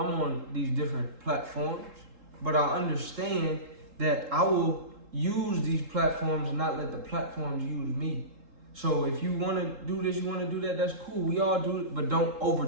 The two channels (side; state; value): left; late; 3.8 ms